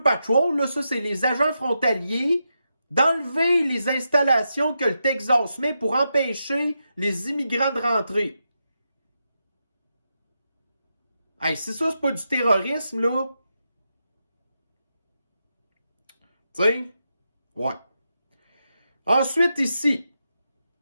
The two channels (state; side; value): inverted; both; correlation -0.86